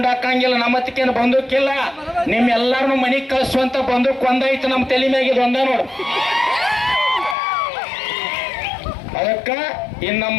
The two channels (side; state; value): right; drops out; at 7.4 s